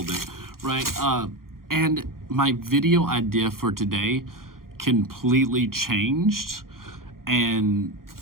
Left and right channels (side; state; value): left; late; 0.92 ms